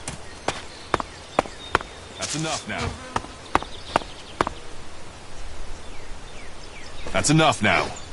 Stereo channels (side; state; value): both; identical; correlation 1.00